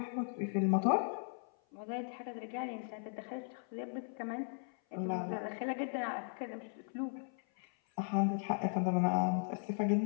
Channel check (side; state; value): right; silent; 53 dB below the other